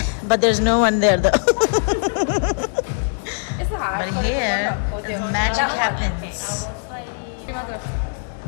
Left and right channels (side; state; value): right; silent; digital silence